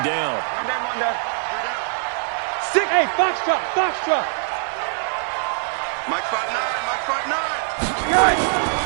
down. Hey, Foxtrot, Foxtrot. Mike spot 9.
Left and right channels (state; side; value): silent; left; 64 dB below the other